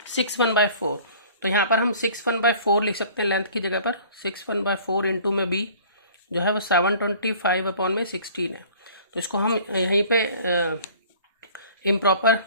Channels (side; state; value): both; inverted; correlation -0.49